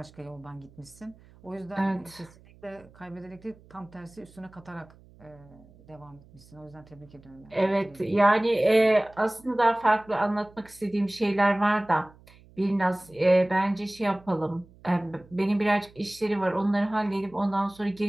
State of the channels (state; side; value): noise; right; hum, 25 dB below the sound